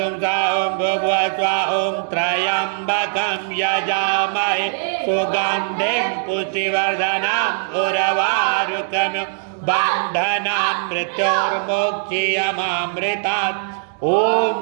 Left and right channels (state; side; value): silent; left; 66 dB below the other